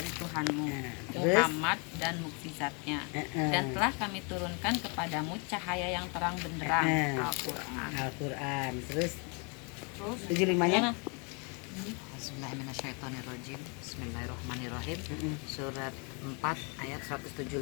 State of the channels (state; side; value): quieter; right; 34.2 dB